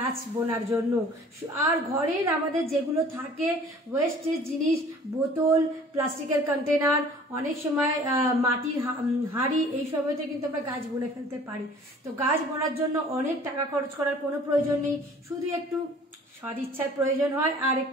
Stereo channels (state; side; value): normal; both; correlation 0.50